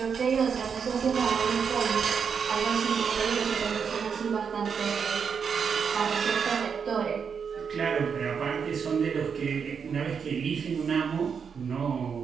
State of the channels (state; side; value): quieter; left; 6.5 dB